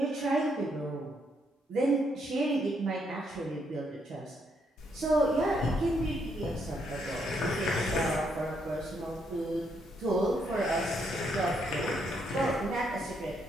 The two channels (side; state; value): both; normal; correlation 0.75